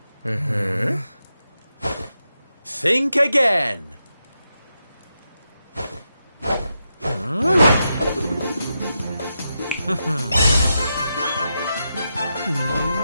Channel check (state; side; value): inverted; both; correlation -0.86